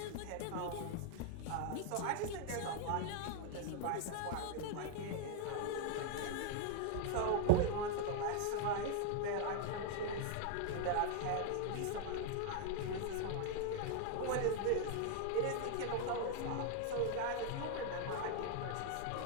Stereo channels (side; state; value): both; different; correlation 0.00